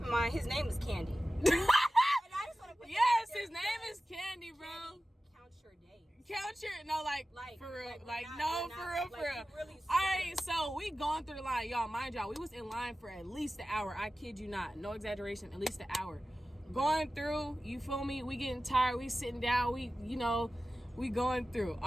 in mind his name is Candy. And I just wanna put his name is Candy, bro. Candy, count your days. Count your for real, for real. Really All right, so we going through the line, y'all. Mind y'all, we was in line for at least an hour. I kid you not, no exaggeration, at least an hour. Going through, you feel me? We getting tired. We sitting down. We going through.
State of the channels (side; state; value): both; normal; correlation 0.95